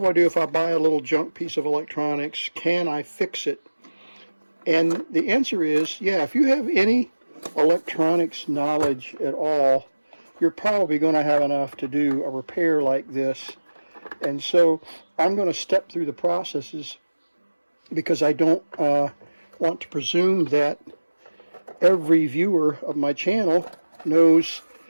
I do if I buy a little junk piece of electronics? Can I fix it? And the answer is, yeah, if you have any electronics knowledge at all, you're probably going to have enough to do a repair like this. And so I'm going to step through the processes because I don't want to presume that every viewer of my channel knows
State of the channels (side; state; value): both; inverted; correlation -1.00